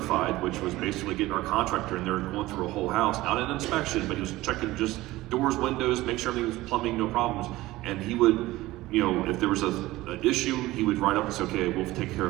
which was basically getting our contractor in there and going through a whole house, not an inspection, but he was checking just doors, windows, make sure everything was plumbing, no problems. And he would, if there was an issue, he would write up and say, okay, we'll take care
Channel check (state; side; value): quieter; left; 18.0 dB